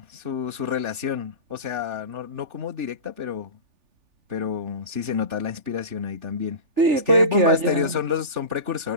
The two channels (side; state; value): left; late; 3.4 ms